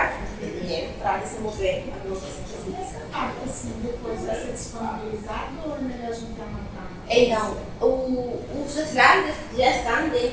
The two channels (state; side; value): identical; both; correlation 1.00